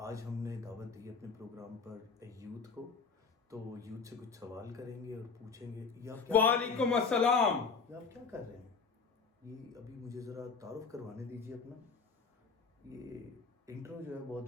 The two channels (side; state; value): right; quieter; 5.1 dB